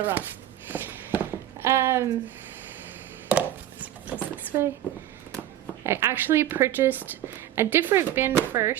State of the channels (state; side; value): quieter; left; 12.2 dB